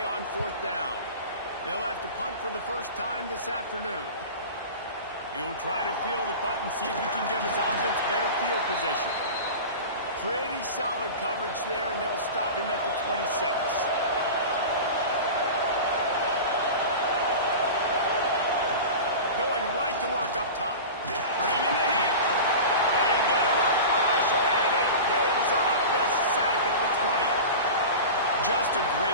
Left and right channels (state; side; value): inverted; both; correlation -0.31